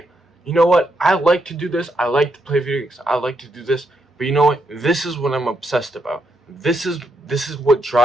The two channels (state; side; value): normal; both; correlation 0.79